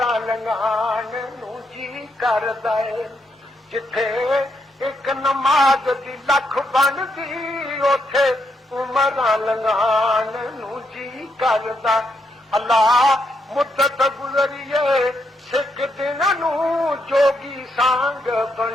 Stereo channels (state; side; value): normal; both; correlation 0.79